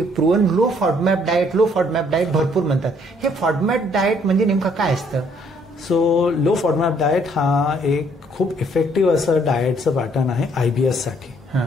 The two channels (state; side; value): normal; both; correlation 0.65